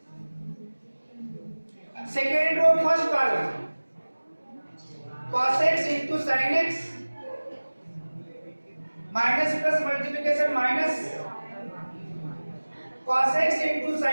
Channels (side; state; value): both; inverted; correlation -1.00